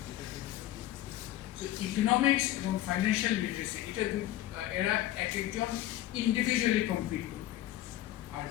ইকোনমিক্স এবং ফাইন্যান্সিয়াল লিটারেসি এটা এরা এক একজন ইন্ডিভিজুয়ালি কমপ্লিট করবে, আর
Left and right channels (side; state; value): right; quieter; 14.1 dB